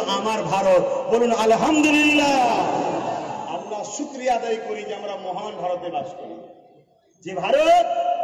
আমার ভারত। বলুন আলহামদুলিল্লাহ। আল্লাহ শুকরিয়া আদায় করি যে আমরা মহান ভারতে বাস করি, যে ভারত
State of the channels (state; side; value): identical; both; correlation 1.00